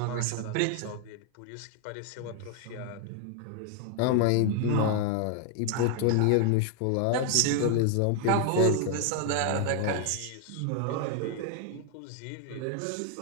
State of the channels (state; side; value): different; both; correlation 0.00